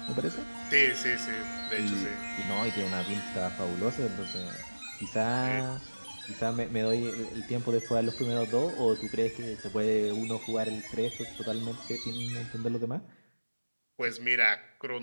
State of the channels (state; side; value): inverted; both; correlation -1.00